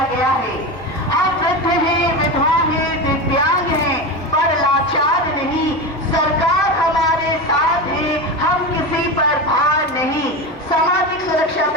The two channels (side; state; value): both; normal; correlation 0.21